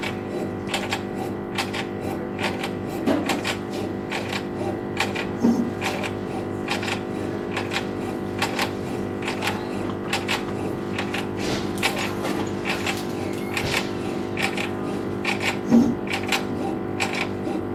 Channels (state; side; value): identical; both; correlation 1.00